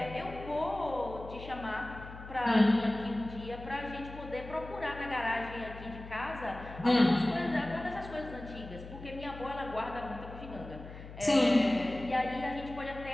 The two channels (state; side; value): noise; left; hum, 13 dB below the sound